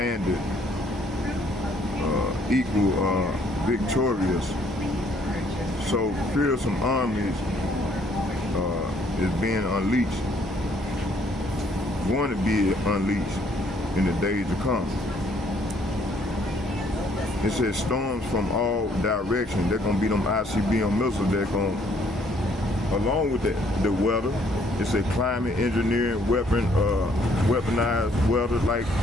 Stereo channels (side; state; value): both; normal; correlation 0.64